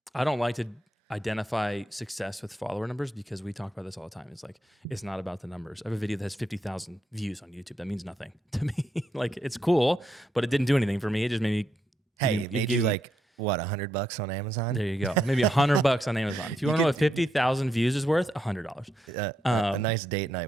I don't like to identify success with follower numbers because we talk about this all the time. It's like it's not about the numbers. I have a video that has 50,000 views on YouTube. That means nothing to me. Like it's cool, but it didn't do anything for me. It just made me. Hey, it made you like what, $100 on Amazon? There you go. Maybe $100 on Amazon. If you want to know what 50,000 views is worth, $100. A nice date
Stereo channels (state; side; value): normal; both; correlation 0.80